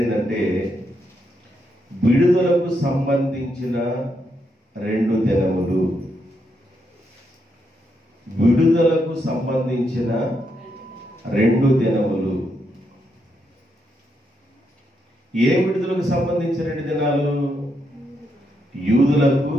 ఏంటంటే విడుదలకు సంబంధించిన 2 దినములు. విడుదలకు సంబంధించిన 2 దినములు. ఏ విడుదలకు సంబంధించిన 2 దినాలు? యూదులకు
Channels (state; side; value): normal; both; correlation 0.80